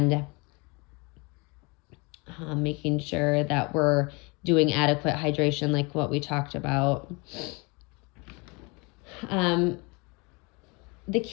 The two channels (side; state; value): right; quieter; 28.6 dB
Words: making sure that we're doing adequate hydration like what we talked about. The